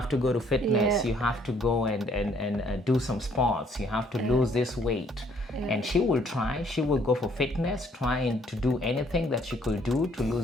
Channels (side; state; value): both; normal; correlation 0.64